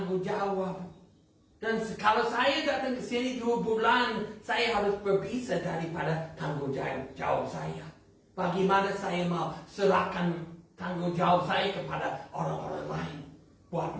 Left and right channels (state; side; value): identical; both; correlation 1.00